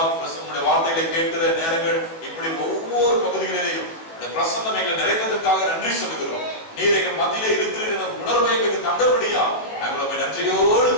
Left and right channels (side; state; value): right; late; 18 ms